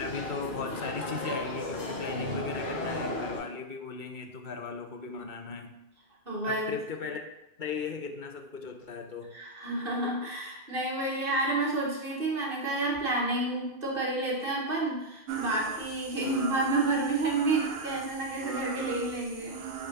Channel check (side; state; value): left; late; 2.6 ms